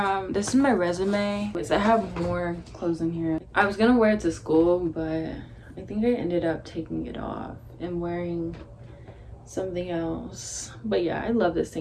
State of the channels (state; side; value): identical; both; correlation 1.00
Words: my resume. I have more clothes in here. I was gonna wear it to school, but I think I ended up taking it off and wearing something else. But yeah, I love this